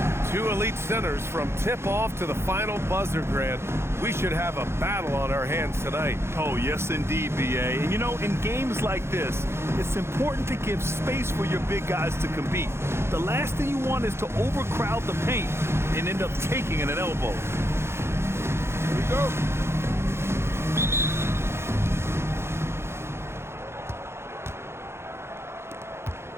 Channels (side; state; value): left; late; 0.12 ms